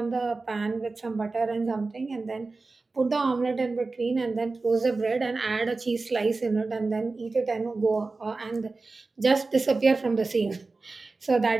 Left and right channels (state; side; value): quieter; left; 3.7 dB